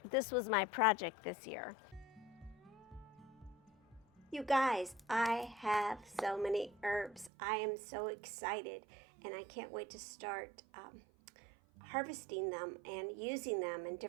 This was my project this year. You guys, I have so many herbs. I am so excited, and I can't wait to start harvesting them and using them in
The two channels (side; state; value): left; drops out; at 7.3 s